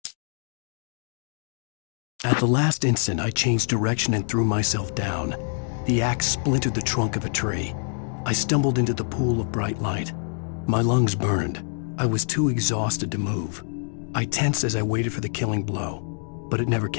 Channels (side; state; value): right; silent; digital silence